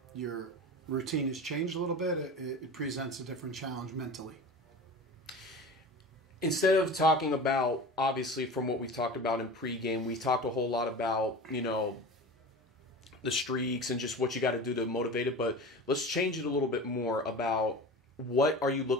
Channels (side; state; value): both; normal; correlation 0.33